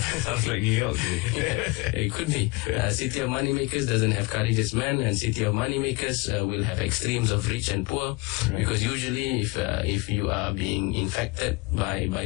like New York. It could be. City of money makers doesn't have courageous men, and city of money makers will have extremes of rich and poor, because usually if you are being infected by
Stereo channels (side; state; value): right; quieter; 24.9 dB